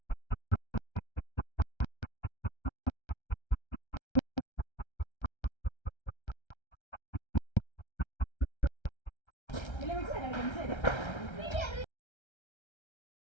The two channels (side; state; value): right; late; 1.3 ms